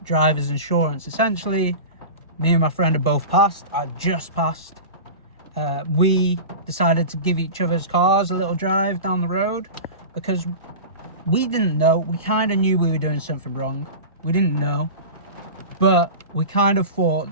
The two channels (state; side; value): inverted; both; correlation -0.30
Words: driver's insurance. Essentially, me and my friend have both passed. I just passed. We decided to give each other's cars a little drive down the road because we didn't know. We kind of knew we were doing something wrong. We didn't know, but we kind of thought